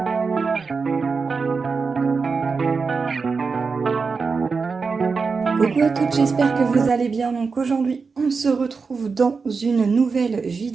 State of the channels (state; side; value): quieter; left; 4.8 dB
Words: à toutes, j'espère que vous allez bien. Donc aujourd'hui, on se retrouve dans une nouvelle